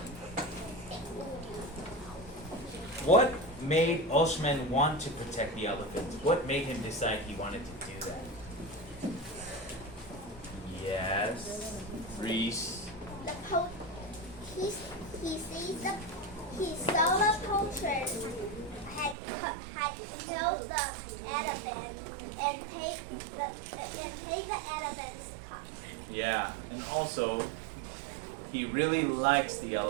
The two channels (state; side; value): drops out; left; at 19.2 s